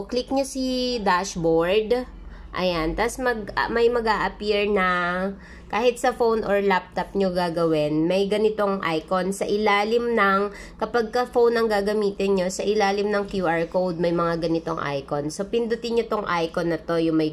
click nyo si dashboard. Ayan, tas may mag-a-appear na kahit sa phone or laptop nyo gagawin, may ganitong icon sa ilalim ng, kapag ka phone ang gagamitin nyo, sa ilalim ng QR code, may mga ganitong icon. So, pindutin nyo tong icon na to, yung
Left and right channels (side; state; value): both; identical; correlation 1.00